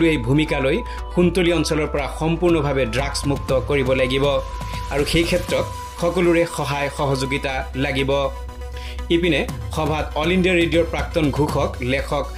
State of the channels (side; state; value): both; identical; correlation 1.00